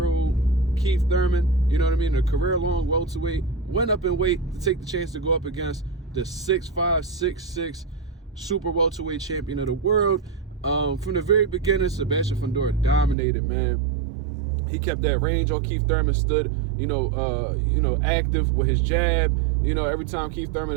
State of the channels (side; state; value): left; drops out; at 13.2 s